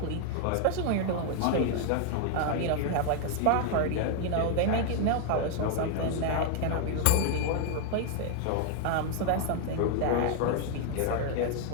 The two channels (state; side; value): different; both; correlation 0.00